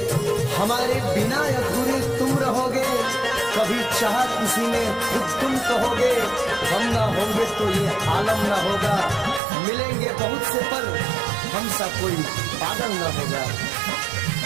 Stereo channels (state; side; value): drops out; left; at 9.4 s